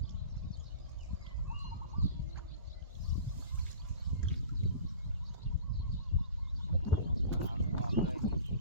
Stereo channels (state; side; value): inverted; both; correlation -0.39